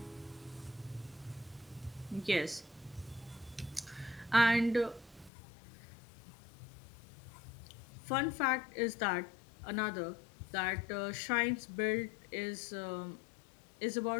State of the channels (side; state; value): right; drops out; at 5.3 s